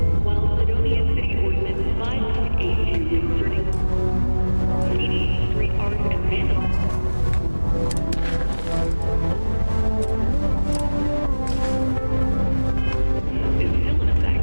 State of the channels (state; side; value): inverted; both; correlation -1.00